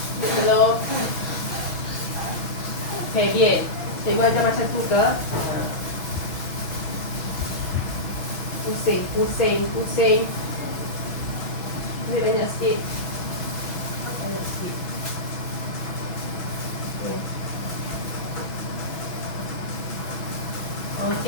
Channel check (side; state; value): right; late; 6.1 ms